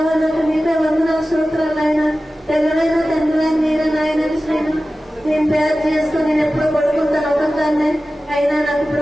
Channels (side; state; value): both; normal; correlation 0.95